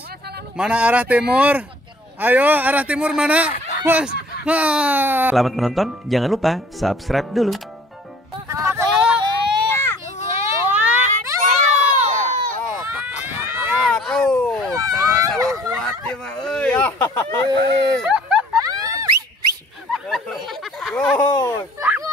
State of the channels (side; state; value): both; normal; correlation 0.53